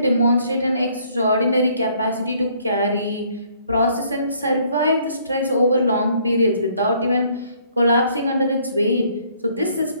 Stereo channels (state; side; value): inverted; both; correlation -0.64